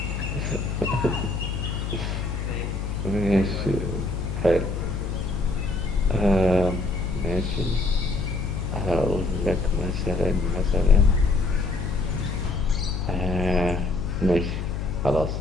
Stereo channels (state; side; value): noise; left; hum, 4 dB below the sound